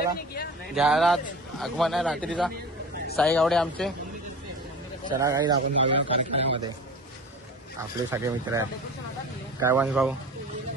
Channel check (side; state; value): both; normal; correlation 0.36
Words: घ्यायला आगमन आहे रात्रीचा. साई गावडे आमचे. चला गाईस आपण जाऊया कार्यक्रमामध्ये. आपले सगळे मित्र आहेत. काय वंश भाऊ